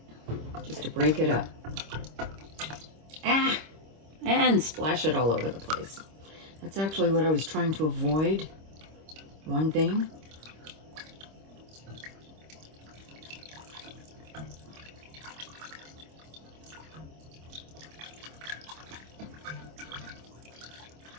Just to break it up. And splash it all over the place. That's actually what I was trying to avoid. One thing.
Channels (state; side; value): late; left; 26 ms